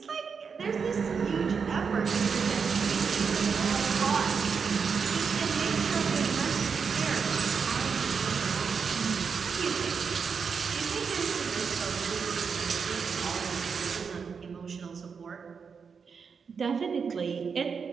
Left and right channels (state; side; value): quieter; left; 5.9 dB